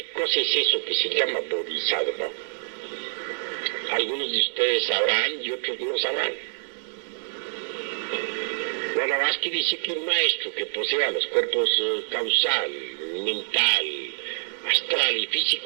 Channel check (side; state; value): left; silent; digital silence